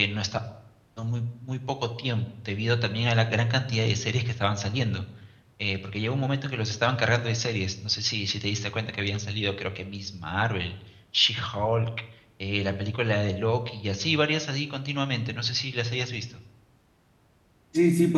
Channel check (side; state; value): both; identical; correlation 1.00